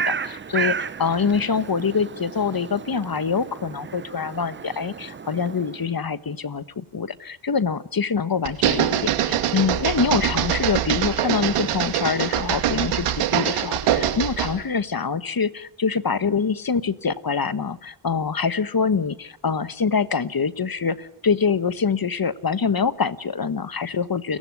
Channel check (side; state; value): both; normal; correlation -0.07